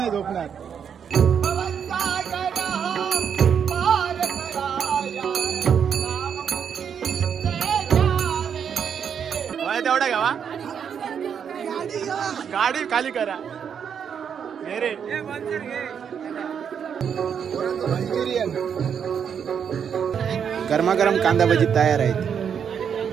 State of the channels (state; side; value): quieter; left; 7.6 dB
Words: झोपणार. तेवढा घ्यावा, गाडी खाली करा. रे मंचुरियन गरमागरम कांदा भजी तयार आहेत.